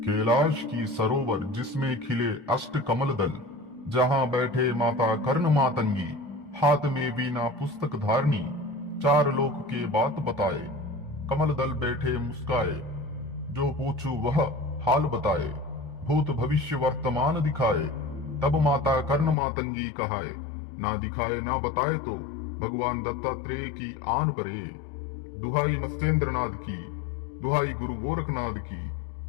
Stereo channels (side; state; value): right; drops out; at 19.4 s